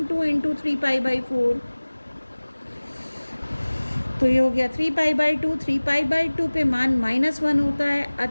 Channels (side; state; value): both; inverted; correlation -1.00